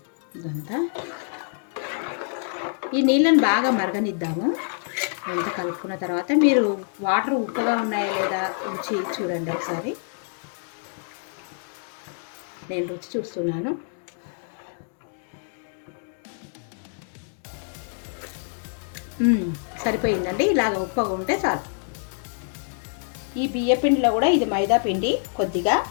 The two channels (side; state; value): right; silent; 61 dB below the other